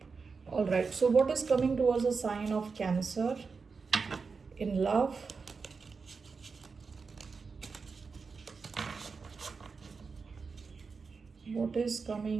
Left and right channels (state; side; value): quieter; left; 4.9 dB